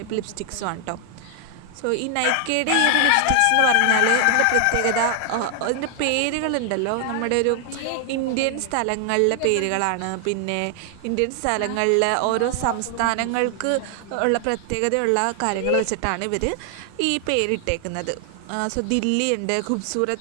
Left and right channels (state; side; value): different; both; correlation 0.00